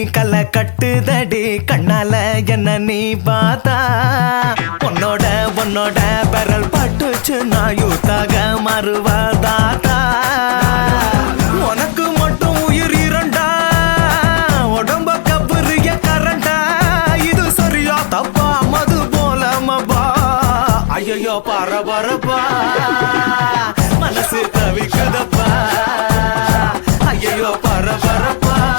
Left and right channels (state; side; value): silent; right; digital silence